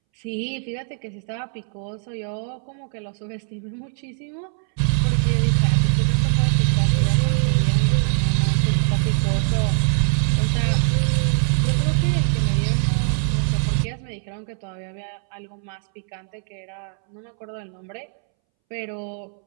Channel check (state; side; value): silent; left; 64 dB below the other